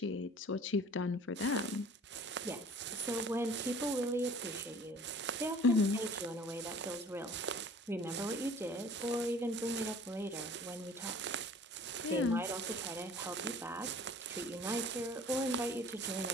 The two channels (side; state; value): both; normal; correlation 0.48